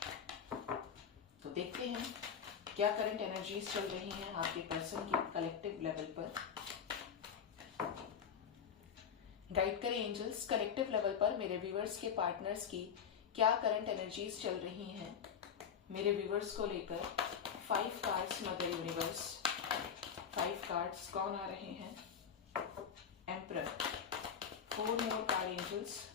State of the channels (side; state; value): right; quieter; 7.5 dB